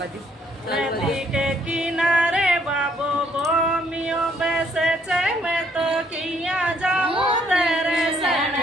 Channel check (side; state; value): both; normal; correlation 0.67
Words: नदी के किनारे बाबो बोमियो बैसे छे मैं तो किया जाऊं तेरे सण